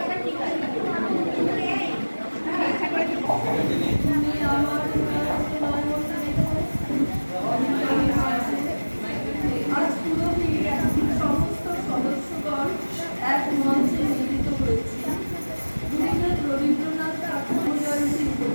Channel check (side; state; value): both; inverted; correlation -1.00